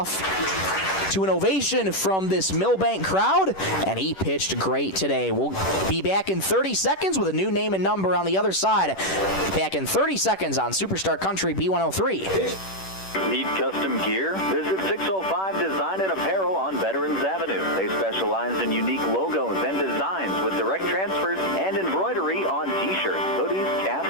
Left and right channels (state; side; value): late; right; 10 ms